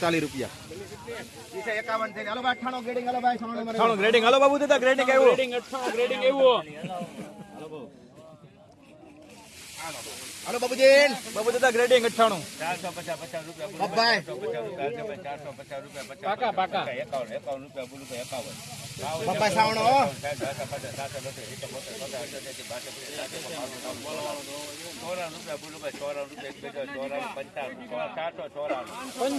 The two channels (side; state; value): both; identical; correlation 1.00